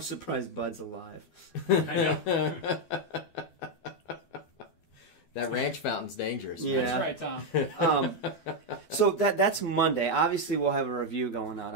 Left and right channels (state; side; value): late; right; 12 ms